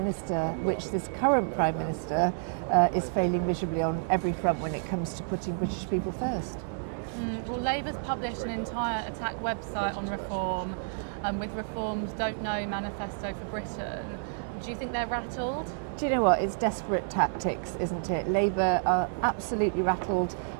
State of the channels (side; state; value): left; silent; digital silence